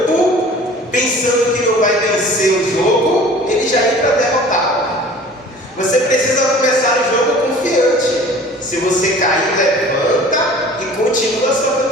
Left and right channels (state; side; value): normal; both; correlation 0.45